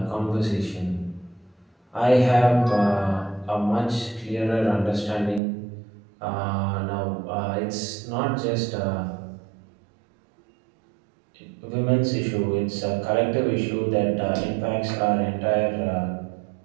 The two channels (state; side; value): drops out; left; at 5.4 s